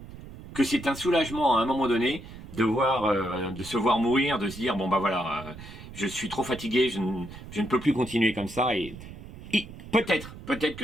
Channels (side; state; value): right; noise; rumble, 15 dB below the sound